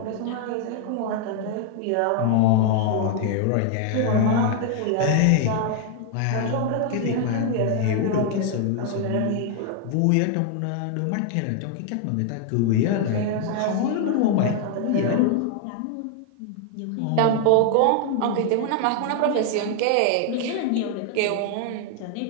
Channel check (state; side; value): different; both; correlation 0.00